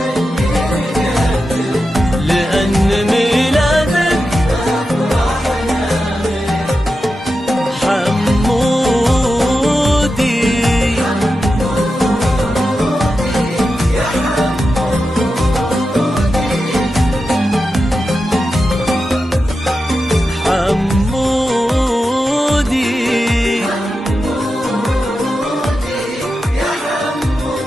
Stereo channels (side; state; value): both; normal; correlation 0.90